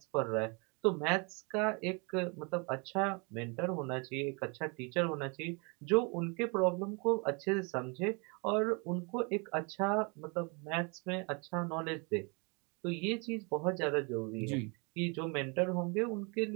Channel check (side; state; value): left; quieter; 32.5 dB